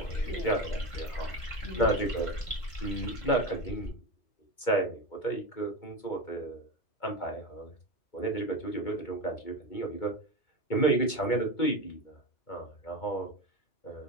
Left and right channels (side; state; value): right; late; 2.2 ms